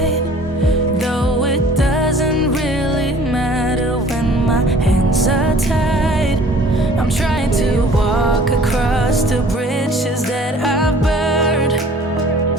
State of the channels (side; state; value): both; normal; correlation 0.51